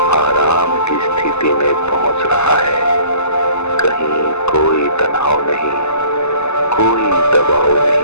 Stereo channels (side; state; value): right; late; 0.81 ms